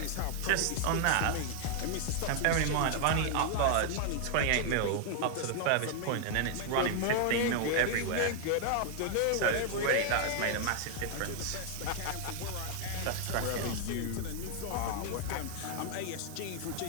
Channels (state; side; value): different; both; correlation 0.00